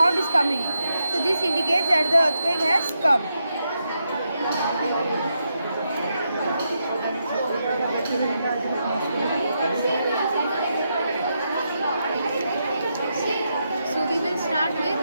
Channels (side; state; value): both; inverted; correlation -0.83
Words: is coming. So this indicates that the earthquake has come. So we will start with